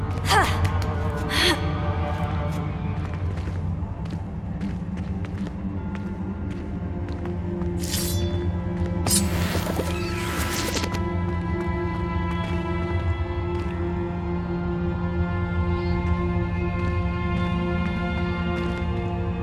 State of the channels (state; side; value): identical; both; correlation 1.00